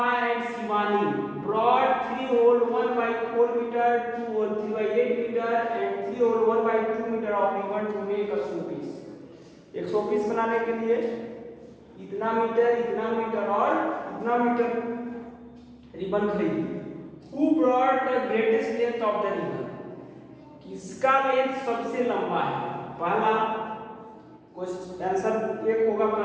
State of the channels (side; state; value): both; identical; correlation 1.00